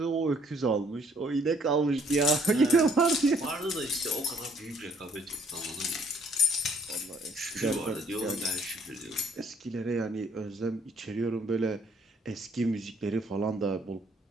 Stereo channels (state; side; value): normal; both; correlation 0.62